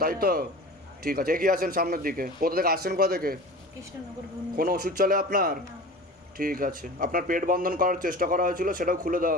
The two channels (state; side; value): normal; both; correlation 0.36